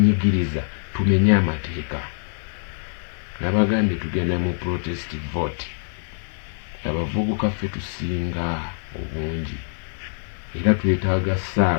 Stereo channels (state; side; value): silent; right; 63 dB below the other